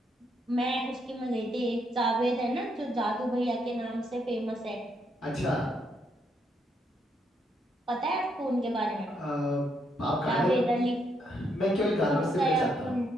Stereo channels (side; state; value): both; normal; correlation 0.75